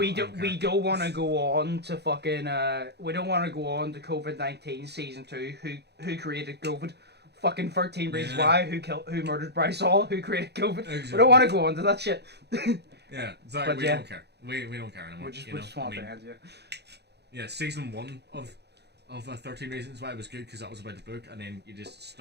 don't want to go on to fucking we don't want to go on to COVID-19 season 2. Who created COVID? Fucking 13 Reasons Why. Who murdered Bryce Hall? Who created COVID? Exactly. We don't want to go on to that shit. Yeah, it's like we don't care. We don't care anymore. We just want to end, yeah, season 1 of 13 Reasons Why was good because that was about the book, and then you just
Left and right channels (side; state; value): left; late; 0.48 ms